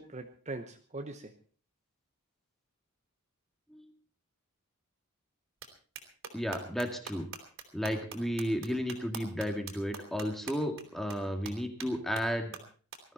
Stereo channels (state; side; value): normal; both; correlation 0.82